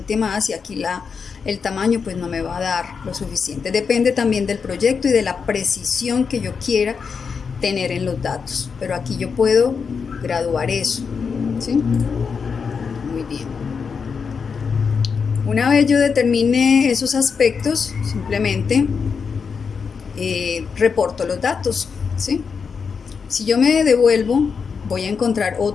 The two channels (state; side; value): quieter; right; 5.8 dB